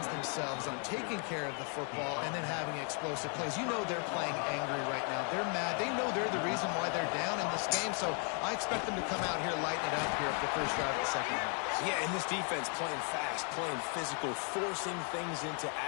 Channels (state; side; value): quieter; right; 38.9 dB